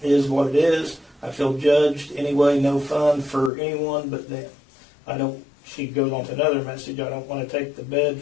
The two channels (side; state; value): right; drops out; at 3.5 s